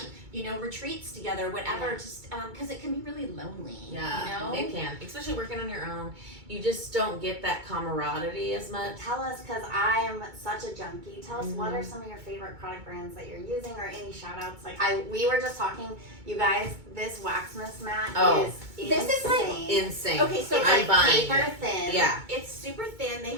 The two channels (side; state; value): left; late; 2.2 ms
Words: you know, retreats together, whatever, just, cause it can be really lonely, Yeah, you know? it can. Especially working on your own. You just don't get that camaraderie as much. Tell us, because I am such a junkie. Tell us what are some of your favorite product brands that you're using, or any shout outs. Like we were just talking, you guys, this Waxmas mat is This is like insane. Insane. Okay, so It's I'm like buying paper it. thin. Yeah. It's super thin. They